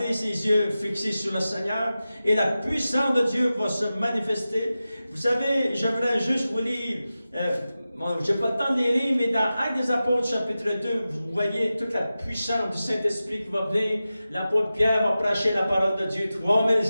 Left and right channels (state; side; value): inverted; both; correlation -0.94